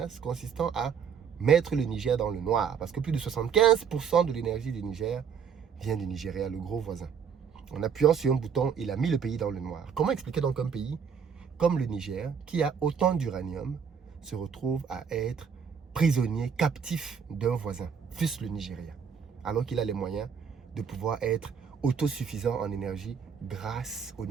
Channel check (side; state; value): left; quieter; 7.0 dB